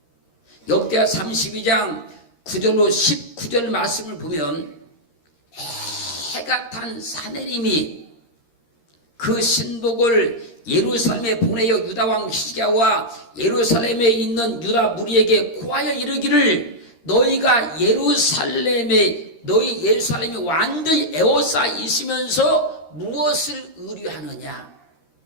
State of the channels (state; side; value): late; right; 13 ms